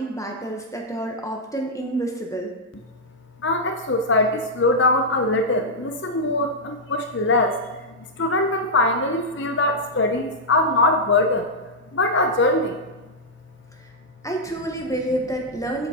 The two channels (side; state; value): both; normal; correlation -0.07